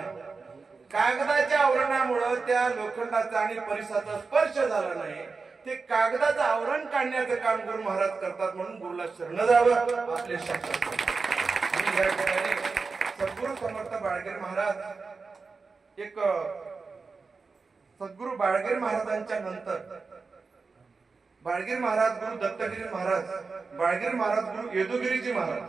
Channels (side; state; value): left; quieter; 4.5 dB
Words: कागदाच्या आवरणामुळे त्या लोखंडाचा आणि परिसाचा स्पर्श झाला नाही, ते कागदाचं आवरण काढण्याचं काम गुरु महाराज करतात. म्हणून गुरुला शरण जावं आपले शास्त्र. आणि या ठिकाणी सद्गुरु समर्थ बाळगीर महाराज, एक सद्गुरु बाळगीर महाराजांच्या नंतर बाळगीर महाराज गुरु दत्तगिरी महाराज, बाळगीर महाराज गुरु येदुगिरीजी